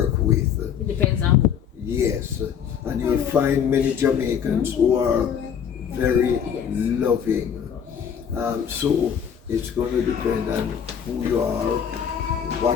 with. It depends on who. Yes, and you'll find many Jamaicans who are very loving. So it's going to depend on who you are,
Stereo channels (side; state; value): right; quieter; 8.0 dB